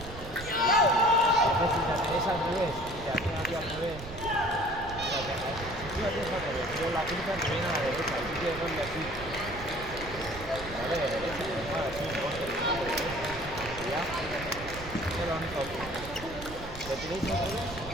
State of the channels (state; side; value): noise; right; rumble, 12 dB below the sound